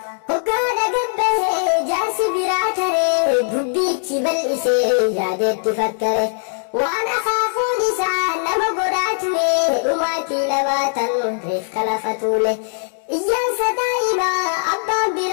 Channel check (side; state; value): right; silent; 66 dB below the other